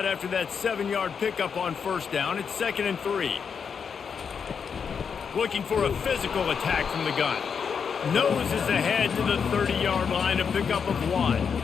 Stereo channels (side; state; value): right; quieter; 6.5 dB